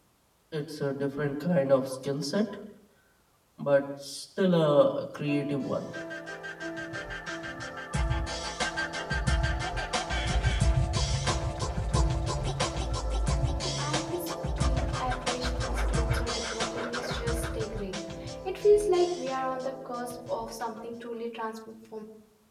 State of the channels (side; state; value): both; identical; correlation 1.00